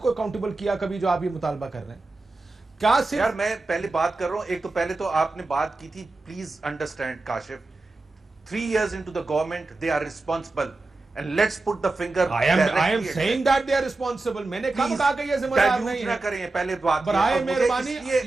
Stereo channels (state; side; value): quieter; left; 3.3 dB